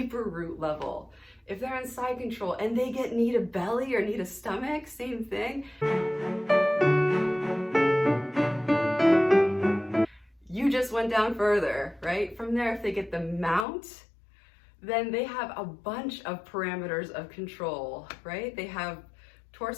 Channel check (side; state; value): right; drops out; at 13.7 s